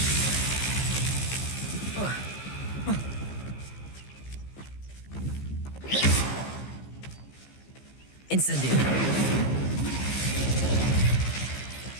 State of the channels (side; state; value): right; late; 15 ms